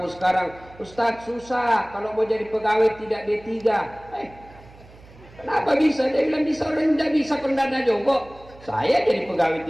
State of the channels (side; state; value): right; noise; hum, 22 dB below the sound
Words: sekarang, Ustadz susah kalau mau jadi pegawai tidak D3. Kenapa bisa? Dia bilang bisa, orang tidak bisa pendana nyogok. Saya jadi pegawai